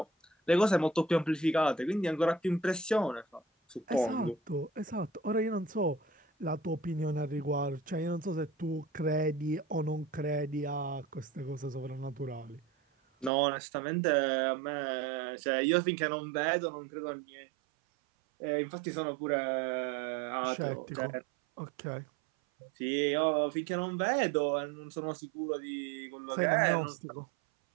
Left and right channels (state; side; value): drops out; left; at 13.3 s